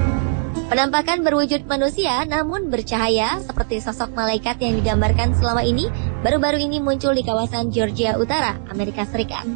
Penampakan berwujud manusia namun bercahaya seperti sosok malaikat yang digambarkan selama ini baru-baru ini muncul di kawasan Georgia Utara, Amerika Serikat.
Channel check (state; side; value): silent; left; digital silence